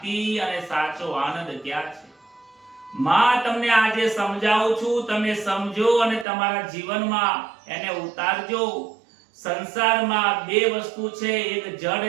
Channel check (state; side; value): drops out; left; at 6.2 s